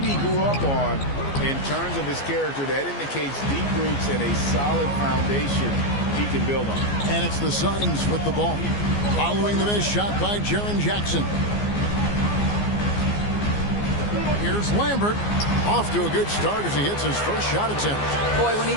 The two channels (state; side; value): late; right; 14 ms